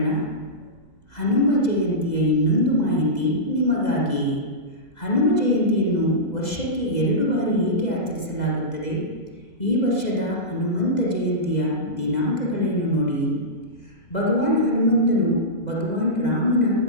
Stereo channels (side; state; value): right; late; 2.0 ms